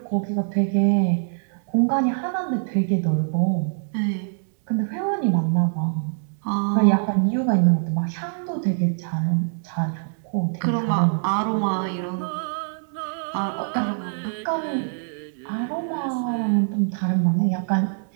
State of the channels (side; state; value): left; silent; digital silence